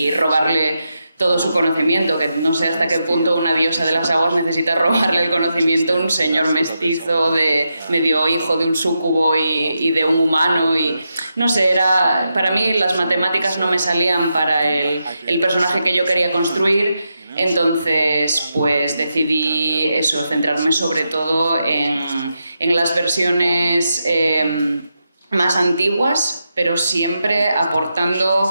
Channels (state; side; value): inverted; both; correlation -0.86